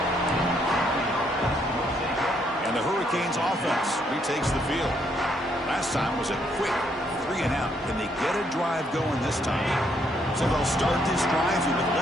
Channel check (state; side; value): normal; both; correlation 0.72